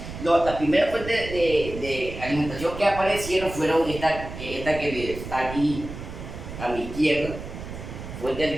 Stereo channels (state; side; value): noise; right; rumble, 10 dB below the sound